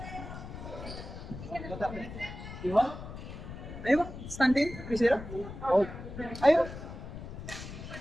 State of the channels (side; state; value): left; noise; rumble, 10 dB below the sound